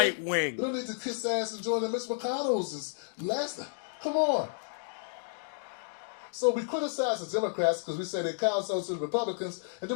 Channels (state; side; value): silent; right; digital silence